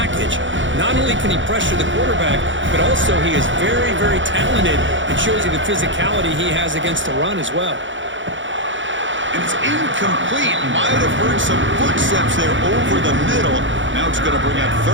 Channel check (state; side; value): late; left; 0.55 ms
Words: Not only can he pressure the quarterback, but also he is very, very talented and shows you the physicality he has against the run as well. And it's incomplete. Might have heard some footsteps there over the middle. Now it's going to bring out